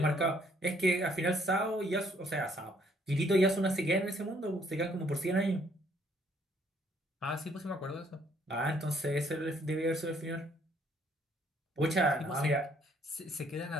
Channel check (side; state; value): both; normal; correlation 0.65